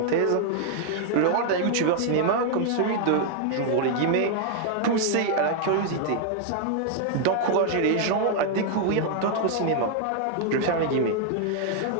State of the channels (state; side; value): different; both; correlation 0.00